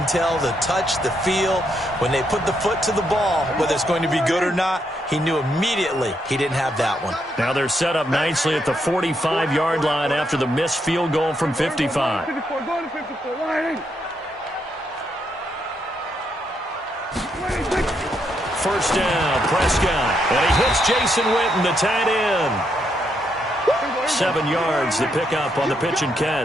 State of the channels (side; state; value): both; normal; correlation 0.78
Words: tell the touch, the feel. When they put the foot to the ball, whether it's going to be good or not, he knew immediately he didn't have that one. Now they're set up nicely at the 45-yard line after the missed field goal from 55. First down, Prescott. And he hits Jason Witten, the tight end. 7 yards, the pickup on the pitch and